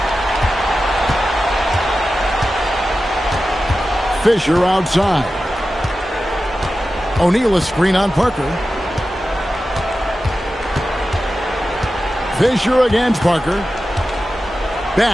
Fisher outside. O'Neal a screen on Parker. Fisher against Parker.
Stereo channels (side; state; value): both; normal; correlation 0.93